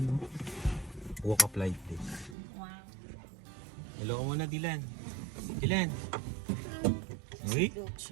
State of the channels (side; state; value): left; drops out; at 2.4 s